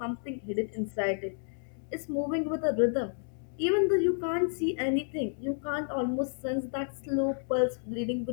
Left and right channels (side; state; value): right; silent; 57 dB below the other